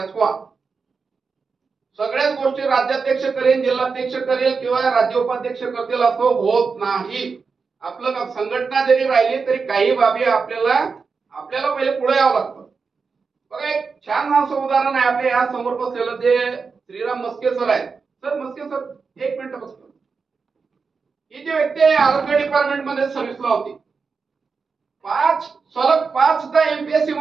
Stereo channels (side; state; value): left; quieter; 5.0 dB